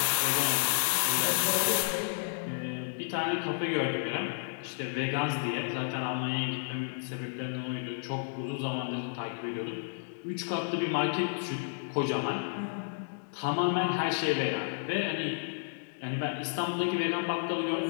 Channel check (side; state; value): right; silent; digital silence